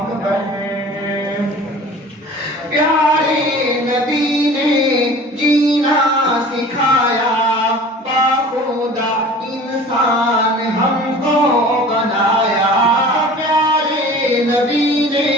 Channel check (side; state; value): both; normal; correlation 0.43